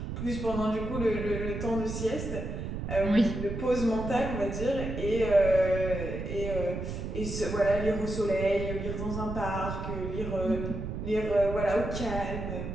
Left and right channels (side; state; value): right; noise; rumble, 5 dB below the sound